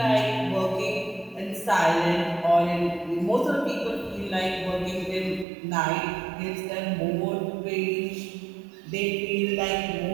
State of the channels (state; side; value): drops out; left; at 5.5 s